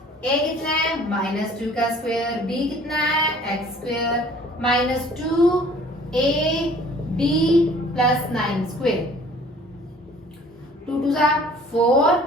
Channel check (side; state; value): both; normal; correlation 0.52